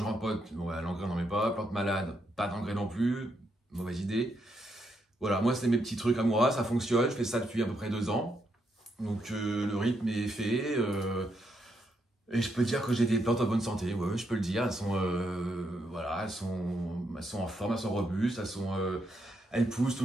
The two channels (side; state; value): both; normal; correlation 0.79